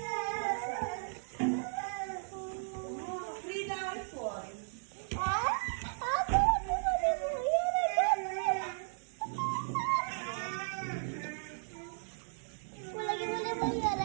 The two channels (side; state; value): left; silent; digital silence